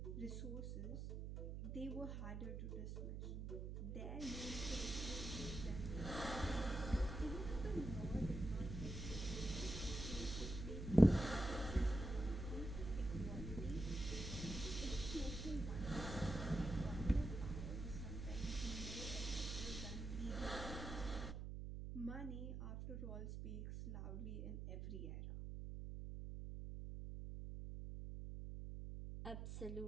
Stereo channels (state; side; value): noise; right; hum, 5 dB below the sound